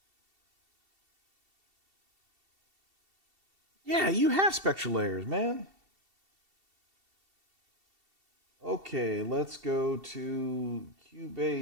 Yeah, you have spectral layers, man. Okay, let's go to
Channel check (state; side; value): late; left; 2.7 ms